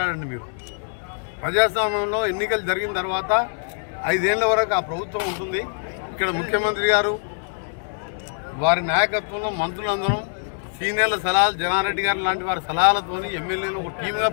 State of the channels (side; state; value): right; silent; digital silence